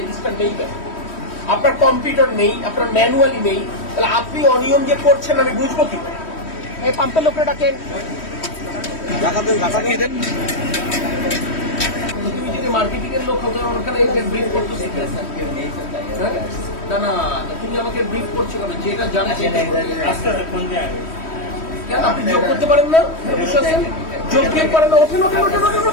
রেজিস্টার নেই কেন? আপনার কম্পিউটার নেই, আপনার ম্যানুয়ালি নেই, তাহলে আপনি অনিয়ম যে করছেন আমি বুঝবো কি করে? এই পাম্পের লোকরা ডাকেন, তুমি যদি মার্কেটিং এর লোক হতো ওখানে ব্রিফ করতো না না, তুমি আমাকে ব্রিফ করছো কেন? যেটা জানো কেন আপনি যোগ করতে পারেন না? যোগ দিয়ে পারেন না? ওঠেন ওঠেন ওঠেন ওঠেন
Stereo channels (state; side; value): late; right; 3.1 ms